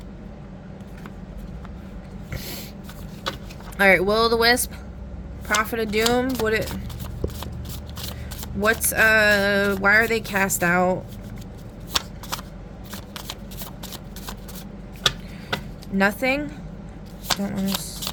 Alright, Will-o'-the-Wisp. Prophet of Doom. Why are they cast out? Nothing? Don't want to...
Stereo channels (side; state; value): both; identical; correlation 1.00